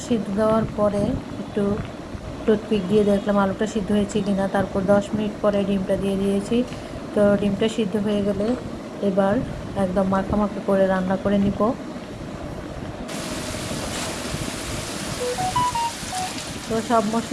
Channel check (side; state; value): both; identical; correlation 1.00